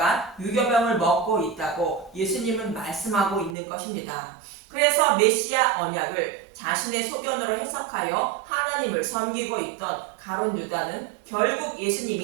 유교병을 먹고 있다고 예수님은 말씀하고 있는 것입니다. 그래서 메시아 언약을 자신의 소견으로 해석하여 하나님을 섬기고 있던 가룟 유다는 결국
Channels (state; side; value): drops out; left; at 3.6 s